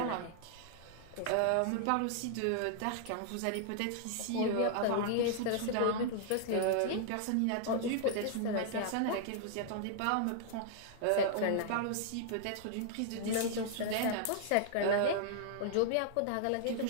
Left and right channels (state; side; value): different; both; correlation -0.01